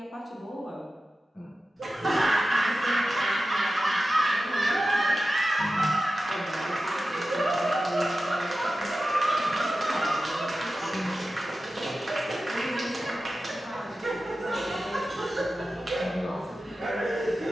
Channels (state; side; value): normal; both; correlation 0.94